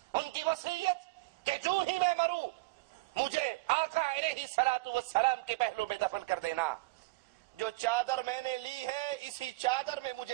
ان کی وصیت کہ جو ہی میں مروں مجھے آقا علیہ الصلوۃ والسلام کے پہلو میں دفن کر دینا. جو چادر میں نے لی ہے اسی چادر میں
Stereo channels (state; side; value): quieter; left; 23.0 dB